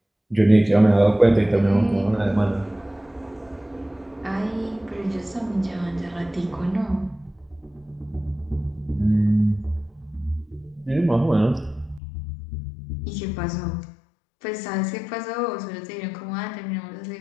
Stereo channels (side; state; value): right; drops out; at 12.0 s